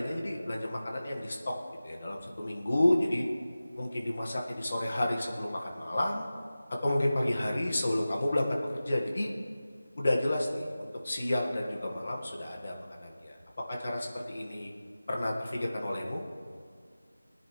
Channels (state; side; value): inverted; both; correlation -0.96